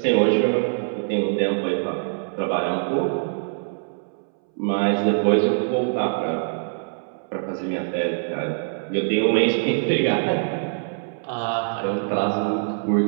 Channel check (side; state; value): left; silent; 63 dB below the other